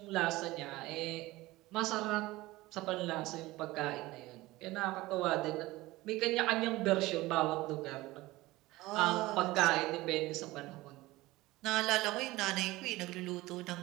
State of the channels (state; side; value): quieter; left; 19.1 dB